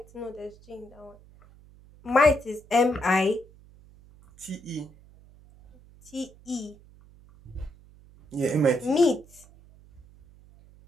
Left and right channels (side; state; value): right; noise; hum, 25 dB below the sound